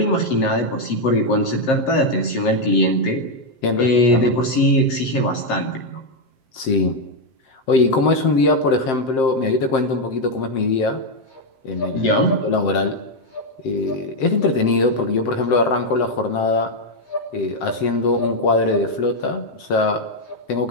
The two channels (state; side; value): late; right; 7.6 ms